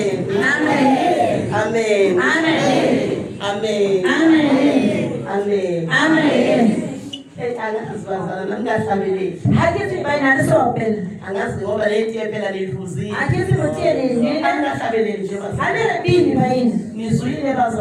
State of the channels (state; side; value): identical; both; correlation 1.00